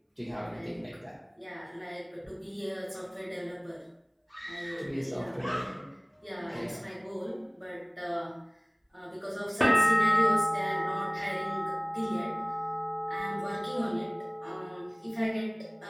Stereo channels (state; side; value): identical; both; correlation 1.00